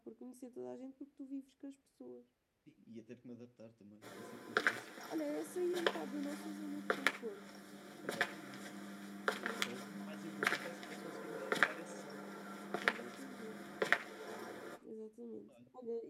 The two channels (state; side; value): identical; both; correlation 1.00